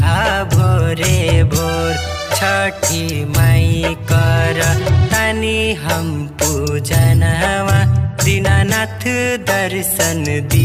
भोरे भोर। छठी माई कर तानी हम पूजनवा दीनानाथ दर्शन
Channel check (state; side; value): identical; both; correlation 1.00